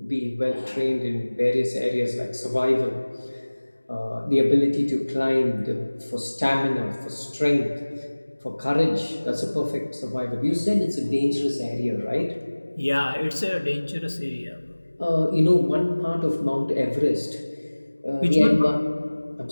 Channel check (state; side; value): inverted; both; correlation -1.00